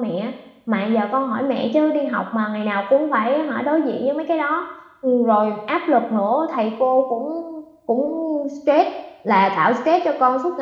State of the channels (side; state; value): both; identical; correlation 1.00